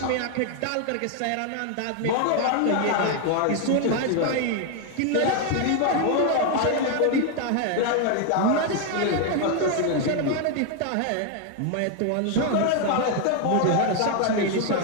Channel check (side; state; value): both; different; correlation 0.01